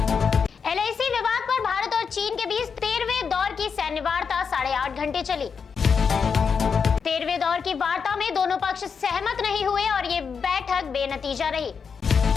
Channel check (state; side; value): quieter; right; 6.0 dB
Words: एलआईसी विवाद पर भारत और चीन के बीच 13वें दौर की सैन्य वार्ता 8.5 घंटे चली। 13वें दौर की वार्ता में दोनों पक्ष सहमत नहीं हुए और ये बैठक बेनतीजा रही।